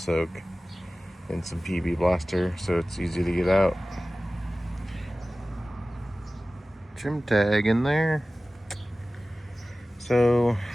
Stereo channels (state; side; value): normal; both; correlation 0.97